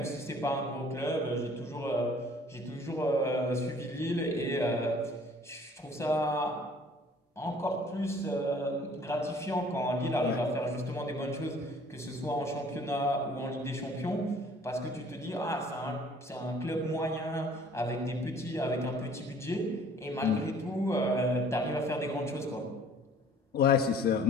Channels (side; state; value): both; normal; correlation 0.54